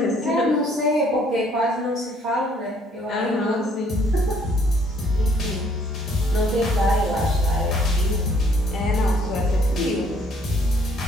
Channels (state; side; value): normal; both; correlation 0.63